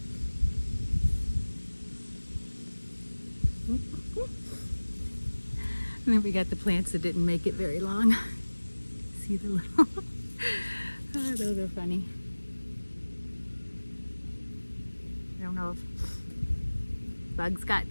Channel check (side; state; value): both; inverted; correlation -1.00